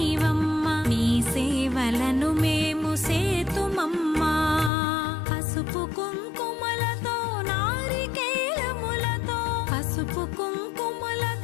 నీ సేవలను మేము సేతుమమ్మా. పసుపు కుంకుమలతో నారికేలములతో, పసుపు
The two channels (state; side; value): drops out; right; at 4.7 s